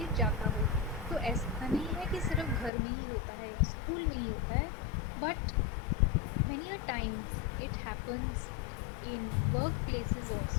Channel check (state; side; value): drops out; right; at 2.7 s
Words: जाता हो। तो ऐसा नहीं है कि सिर्फ घर में ही होता है या स्कूल में ही होता है, but many a times it happens in workplaces